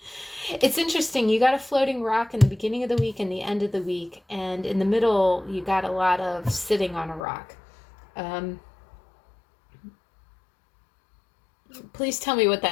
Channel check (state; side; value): drops out; right; at 7.2 s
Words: It's interesting. You got a floating rock in the beginning of the week and the end of the week. And in the middle, you got a lot of sitting on a rock. Please tell me what